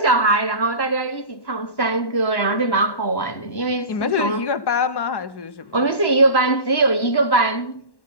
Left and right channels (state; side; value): late; right; 1.1 ms